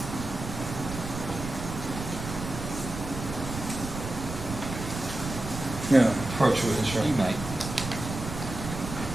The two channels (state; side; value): noise; right; rumble, 7 dB below the sound